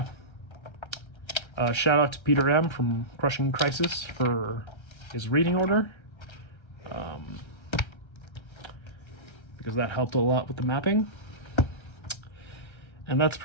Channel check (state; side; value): late; right; 1.3 ms